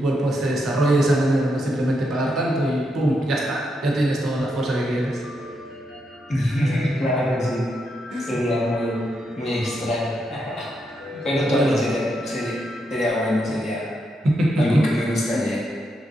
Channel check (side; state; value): both; normal; correlation 0.82